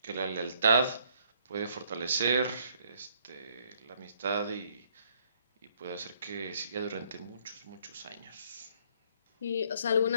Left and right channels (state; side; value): inverted; both; correlation -0.66